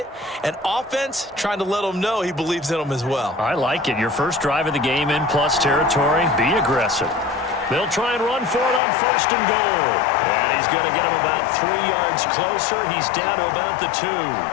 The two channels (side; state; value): right; drops out; at 8.8 s